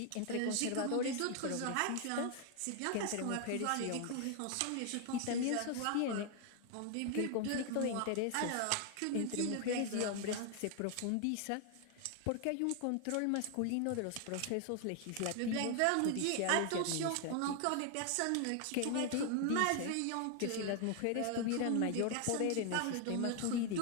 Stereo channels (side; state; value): both; different; correlation 0.00